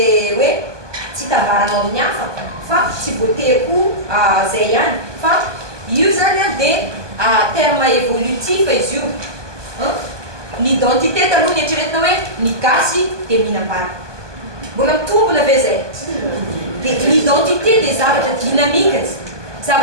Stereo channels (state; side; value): late; left; 1.2 ms